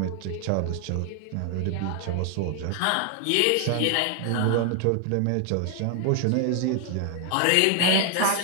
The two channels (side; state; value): both; different; correlation 0.00